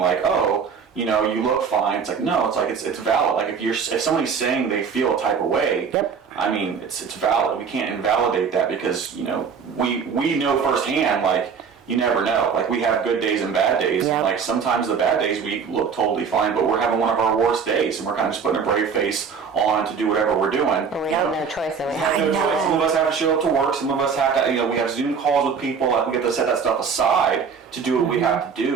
oh, you look fine. It's like, no, it's like it's valid. Like if somebody's saying they feel a type of way, I mean, it's valid. We can't invalidate that because we know firsthand, like, you never know. Like, we have good days and bad days. Yep. And like, sometimes the bad days we look totally fine, but we're having one of our worst days, and we're kind of just putting a brave face on to do whatever we're doing. But we have no choice. We have no choice. Some of us have to show up to work. Some of us have to, we have Zoom calls with people. Like, we have to set that stuff aside to do what we have to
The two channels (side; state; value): left; quieter; 6.2 dB